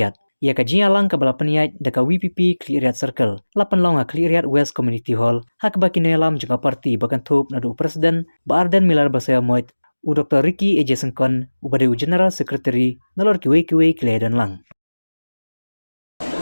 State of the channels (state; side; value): inverted; both; correlation -1.00